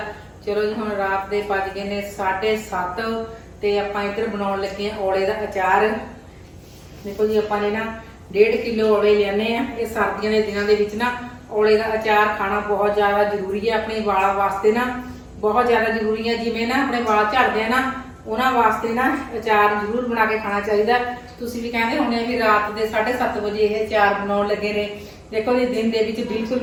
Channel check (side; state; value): both; identical; correlation 1.00